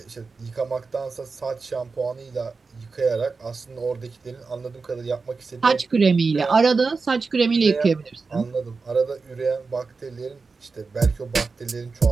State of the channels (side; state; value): left; quieter; 4.4 dB